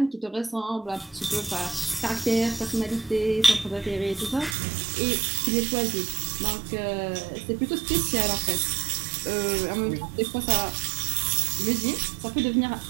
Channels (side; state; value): left; drops out; at 4.5 s